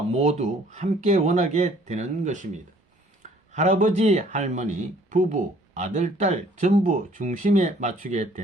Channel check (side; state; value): both; normal; correlation 0.58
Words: 모두 함께 원하게 되는 것입니다. 할아버지, 할머니, 부부, 아들, 딸 전부 중심에 맞추게